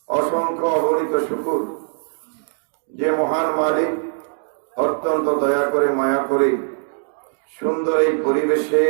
অসংখ্য অগণিত শুকর যে মহান মালিক অত্যন্ত দয়া করে মায়া করে সুন্দর এই পরিবেশে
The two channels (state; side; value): silent; left; digital silence